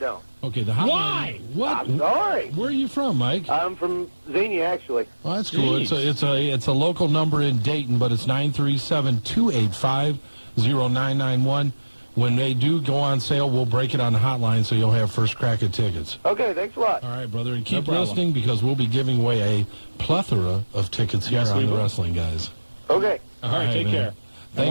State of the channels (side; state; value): both; inverted; correlation -1.00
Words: Okay, the hotline. Why? What? I'm sorry. Where are you from, Mike? I'm from Xenia, actually. Well, that's cool. It's a local number in Dayton, but it's 937-285-0991. When they do go on sale, we'll break it on the hotline so you'll have first crack at tickets. Okay, thanks a lot. All right, brother, and keep listening because we'll be giving away a plethora of tickets here on the Wrestling Guys. Okay. All right, take care.